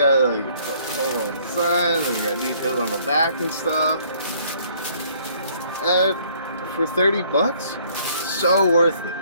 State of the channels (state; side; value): inverted; both; correlation -0.61